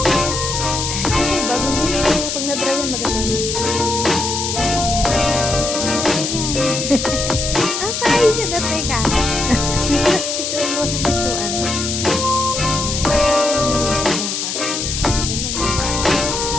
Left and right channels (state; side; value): noise; left; hiss, 2 dB below the sound